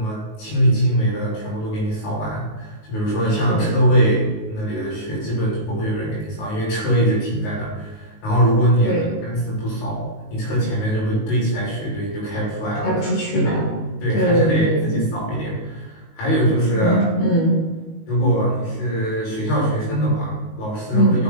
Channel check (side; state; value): right; late; 19 ms